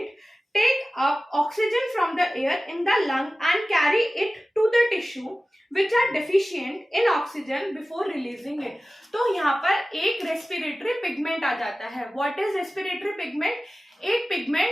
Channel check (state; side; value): normal; both; correlation 0.96